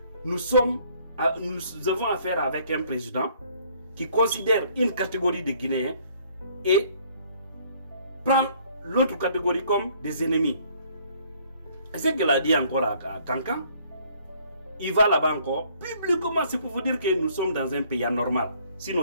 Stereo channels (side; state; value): both; inverted; correlation -0.62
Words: Nous avons affaire avec un président qui considère une catégorie de Guinéens et prend l'autre catégorie comme des ennemis. Et ce qu'il a dit encore à Kankan, il va là-bas encore, publiquement, c'est pour vous dire que nous sommes dans un pays anormal.